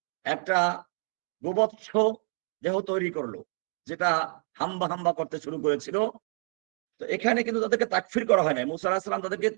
একটা গোবৎস দেহ তৈরি করলো, যেটা হাম্বা হাম্বা করতে শুরু করেছিল। তো এখানে কিন্তু তাদেরকে তাকফীর করা হয় না, মূসা আলাইহিস সালাম তাদেরকে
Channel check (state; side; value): quieter; left; 38.1 dB